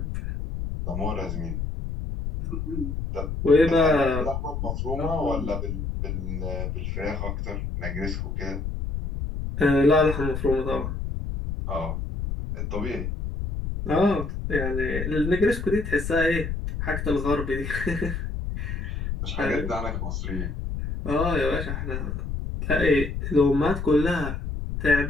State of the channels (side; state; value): left; noise; rumble, 4 dB below the sound